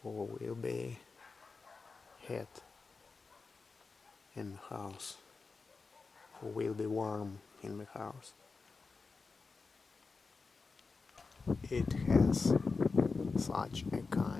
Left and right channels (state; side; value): quieter; right; 4.4 dB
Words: for will be heat in the house, for will be warm in the house. It has such a